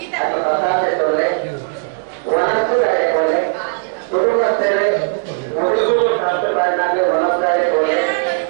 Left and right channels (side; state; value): left; silent; 68 dB below the other